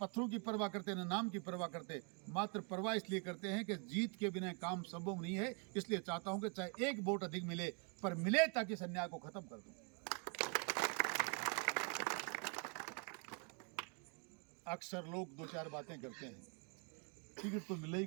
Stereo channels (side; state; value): left; quieter; 33.1 dB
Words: की परवाह करते, ना नाम की परवाह करते, मात्र परवाह इसलिए करते हैं कि जीत के बिना काम संभव नहीं है। इसलिए चाहता हूं कि चाहे एक वोट अधिक मिले, पर मिले ताकि इस अन्याय को खत्म कर दूं। अक्सर लोग 2-4 बातें करते हैं, टिकट तो मिले ही